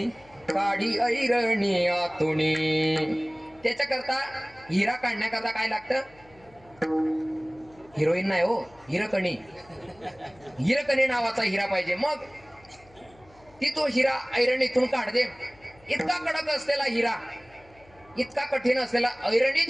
काढी ऐरणी आतुनी. त्याच्याकरता हिरा काढण्याकरता काय लागतं, हिरोईन नाही हो, हिरकणी. हिरकणी नावाचा हिरा पाहिजे. मग ती तो हिरा ऐरणीतून काढते. इतका कडक असलेला हिरा, इतका कठीण असलेला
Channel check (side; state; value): left; noise; hum, 28 dB below the sound